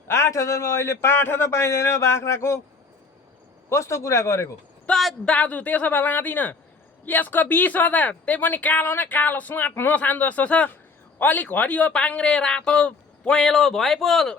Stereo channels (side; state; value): right; quieter; 4.4 dB